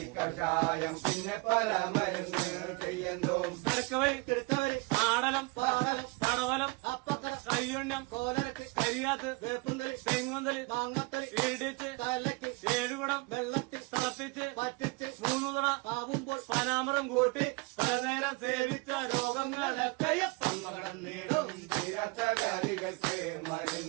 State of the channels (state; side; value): quieter; left; 27.5 dB